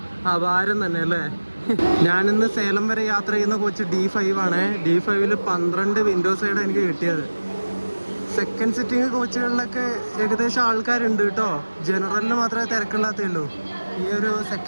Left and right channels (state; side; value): inverted; both; correlation -1.00